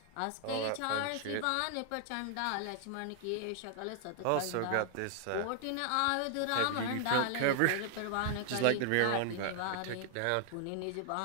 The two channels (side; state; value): both; different; correlation 0.00